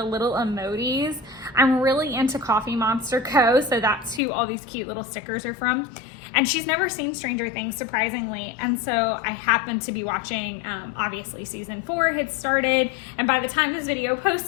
little emojis. I'm really into Coffee Monster Co., so that's who all these cute little stickers are from. And she's never seen Stranger Things, surprisingly. And so I happened to be watching, obviously season 4 had started. And by the time this video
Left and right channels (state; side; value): drops out; right; at 4.2 s